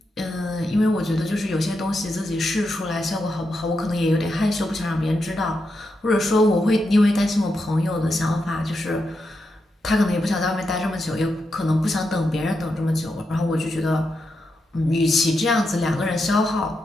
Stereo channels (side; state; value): both; normal; correlation 0.85